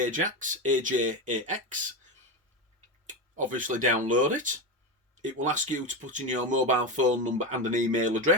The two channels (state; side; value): normal; both; correlation 0.16